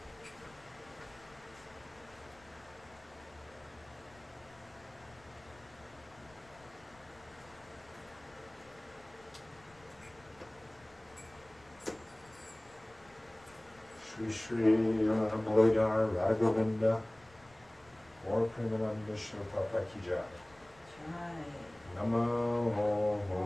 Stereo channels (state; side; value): noise; left; rumble, 27 dB below the sound